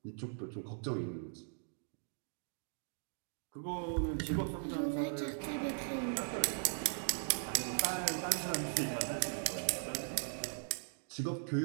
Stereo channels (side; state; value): left; silent; digital silence